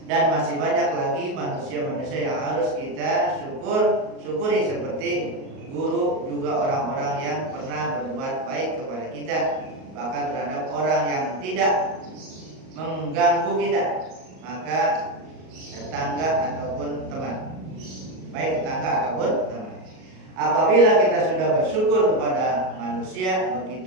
Dan masih banyak lagi manusia-manusia yang harus kita syukuri seperti guru, juga orang-orang yang pernah berbuat baik kepada kita, bahkan terhadap orang yang tidak mengganggu kita, maka tetangga ataupun teman, baik tetangga ataupun teman. Apabila kita sudah bersyukur kepada manusia,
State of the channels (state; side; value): late; left; 38 ms